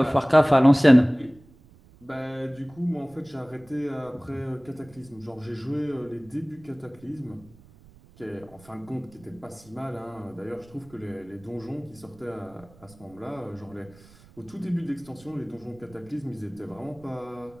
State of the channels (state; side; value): noise; right; rumble, 25 dB below the sound